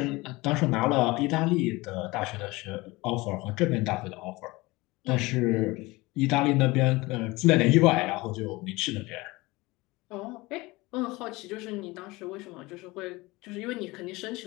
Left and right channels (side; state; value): right; quieter; 22.0 dB